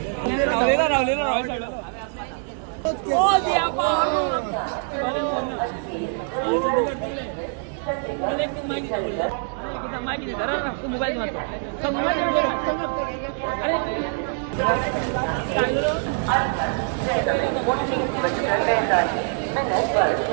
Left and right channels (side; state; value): left; silent; 56 dB below the other